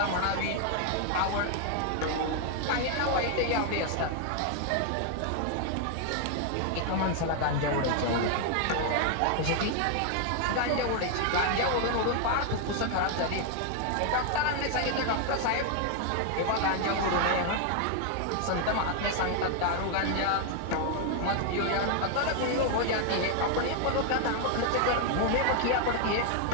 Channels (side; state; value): both; different; correlation 0.00